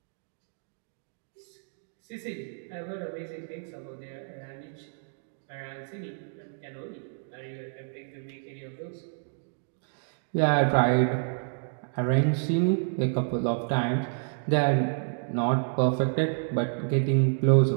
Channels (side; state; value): left; silent; digital silence